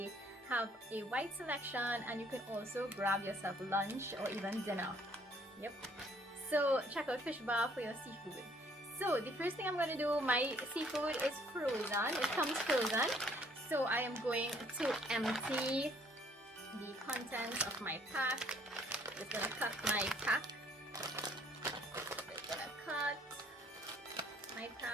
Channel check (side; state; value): both; normal; correlation 0.62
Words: have a wide selection and you can also grab yourself lunch or even dinner. Yep. So check out Fishbar for your seafood. So the first thing I'm going to do, my seafood is frozen. It comes frozen. So I am going to empty the contents of my pack. Just going to cut my pack. Just going to cut my